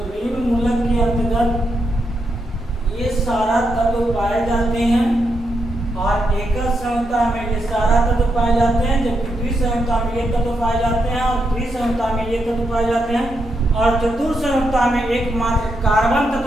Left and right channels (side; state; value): both; normal; correlation 0.82